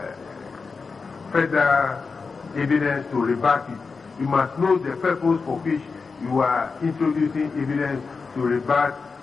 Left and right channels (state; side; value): quieter; right; 4.7 dB